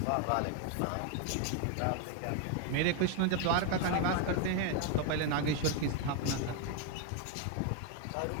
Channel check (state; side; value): different; both; correlation 0.01